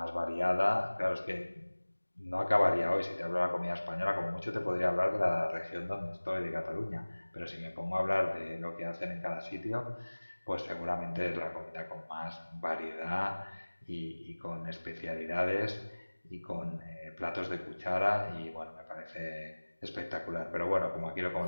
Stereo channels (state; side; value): inverted; both; correlation -1.00